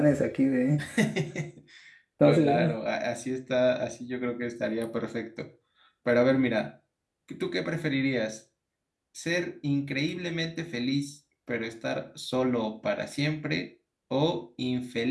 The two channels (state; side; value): identical; both; correlation 1.00